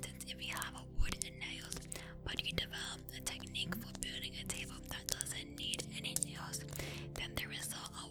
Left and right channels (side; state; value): both; identical; correlation 1.00